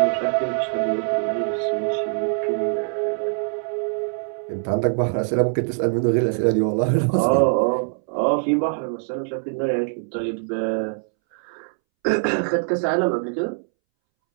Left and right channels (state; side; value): silent; left; 63 dB below the other